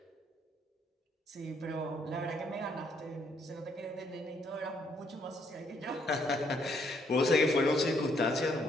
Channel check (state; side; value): normal; both; correlation 0.70